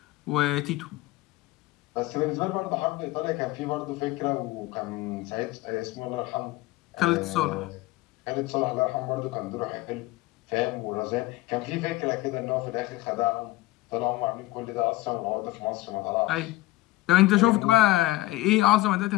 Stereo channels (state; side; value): quieter; right; 18.3 dB